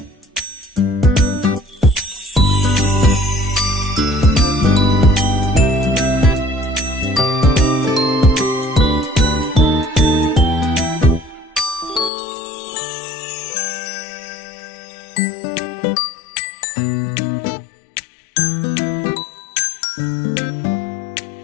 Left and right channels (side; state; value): right; drops out; at 12.1 s